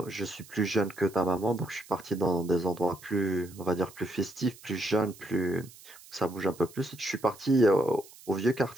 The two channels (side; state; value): right; noise; hiss, 21 dB below the sound